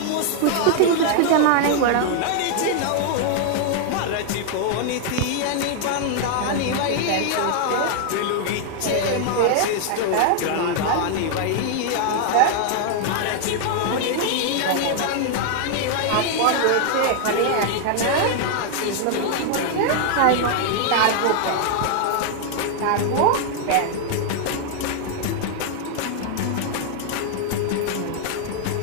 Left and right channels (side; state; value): both; different; correlation 0.00